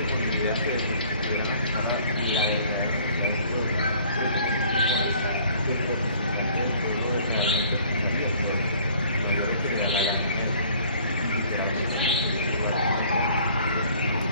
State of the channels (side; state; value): both; inverted; correlation -0.55